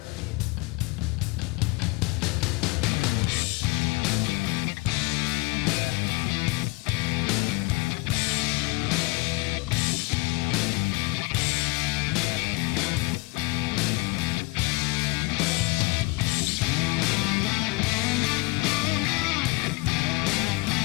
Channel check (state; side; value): quieter; right; 24.7 dB